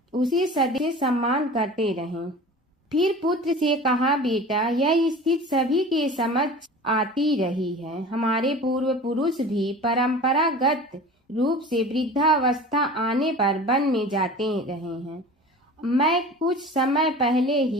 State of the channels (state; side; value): normal; both; correlation 0.38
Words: उसे सदैव सम्मान करते रहें। फिर पुत्र से कहा, बेटा, यह स्थिति सभी के समझ आती रही है। हमारे पूर्व पुरुष भी परंपरागत रूप से वृद्धावस्था आने पर वन में जाते रहे हैं। मैं कुछ समय पहले